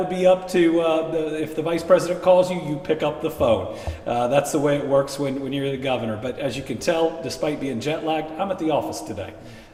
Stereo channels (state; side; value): identical; both; correlation 1.00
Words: be up to, if the vice president calls you, you pick up the phone. That's the way it works when you're the governor. But as you can tell, despite being jet lagged, I'm at the office today.